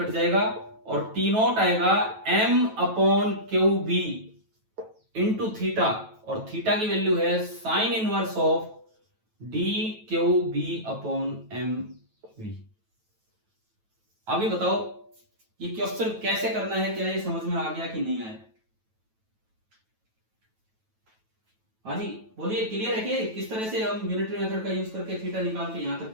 जाएगा, और टी नॉट आएगा M upon Q B into theta, और थीटा की वैल्यू है sine inverse of D Q B upon M V. अभी बताओ ये क्वेश्चन कैसे करना है, क्या ये समझ में आ गया कि नहीं आया? हाँ जी बोलिए, क्लियर है कि किस तरह से हम यूनिटरी मेथड का यूज करके थीटा निकाल के यहां तक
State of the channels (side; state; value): left; late; 9.2 ms